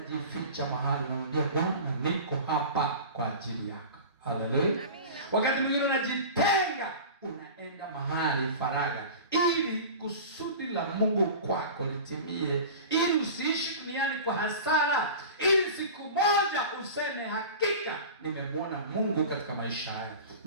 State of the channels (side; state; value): both; inverted; correlation -0.35